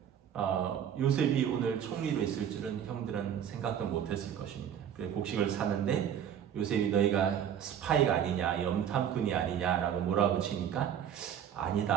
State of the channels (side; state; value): left; quieter; 9.1 dB